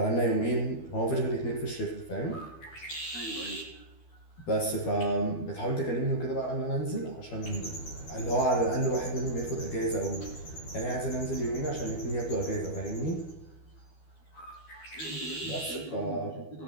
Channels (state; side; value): late; right; 12 ms